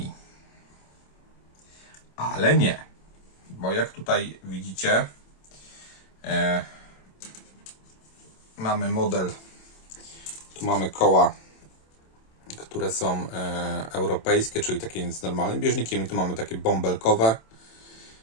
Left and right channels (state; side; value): late; right; 27 ms